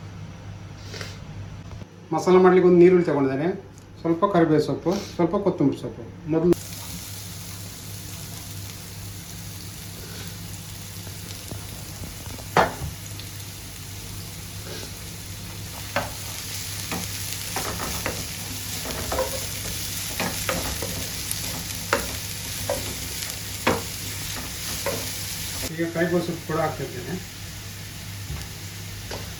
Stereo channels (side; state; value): both; identical; correlation 1.00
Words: ಮಸಾಲ ಮಾಡಲಿಕ್ಕೆ ಒಂದು ನೀರುಳ್ಳಿ ತಗೊಂಡಿದ್ದೇನೆ, ಸ್ವಲ್ಪ ಕರಿಬೇವು ಸೊಪ್ಪು, ಸ್ವಲ್ಪ ಕೊತ್ತಂಬರಿ ಸೊಪ್ಪು. ಮೊದಲು ಈಗ ಕರಿಬೇವು ಸೊಪ್ಪು ಕೂಡ ಹಾಕ್ತಾ ಇದ್ದೇನೆ.